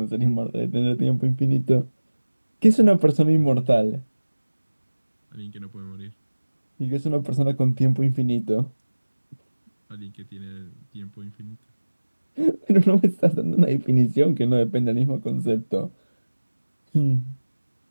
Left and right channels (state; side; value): inverted; both; correlation -1.00